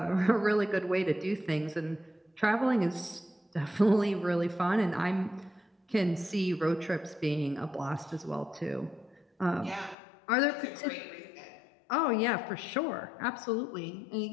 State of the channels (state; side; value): drops out; right; at 10.0 s